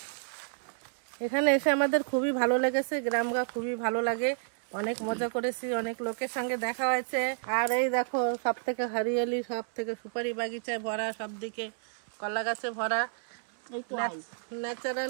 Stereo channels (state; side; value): silent; left; 58 dB below the other